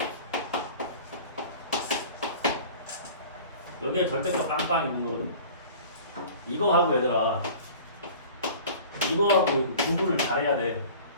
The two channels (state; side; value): inverted; both; correlation -0.43